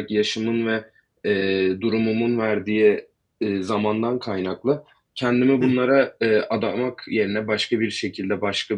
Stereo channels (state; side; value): identical; both; correlation 1.00